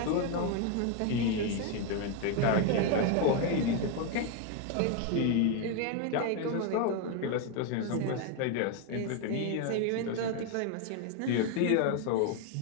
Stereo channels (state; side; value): different; both; correlation 0.01